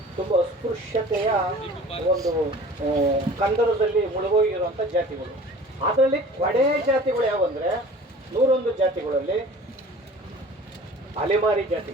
ತುಂಬ ಅಸ್ಪೃಶ್ಯತೆಯ ಒಂದು ಕಂದರದಲ್ಲಿ ಮುಳುಗೋಗಿರುವಂಥ ಜಾತಿಗಳು. ಅದರಲ್ಲಿ ಕಡೆ ಜಾತಿಗಳು ಯಾವಂದರೆ 101 ಜಾತಿಗಳಲ್ಲಿ ಅಲೆಮಾರಿ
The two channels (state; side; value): normal; both; correlation 0.44